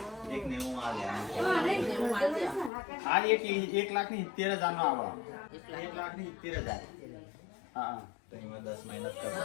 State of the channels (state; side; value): drops out; right; at 2.7 s